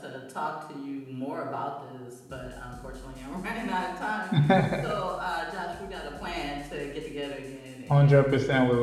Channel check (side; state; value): both; identical; correlation 1.00